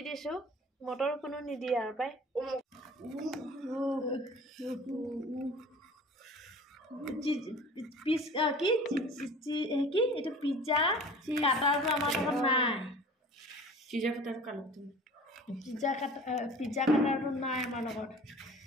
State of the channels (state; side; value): normal; both; correlation 0.43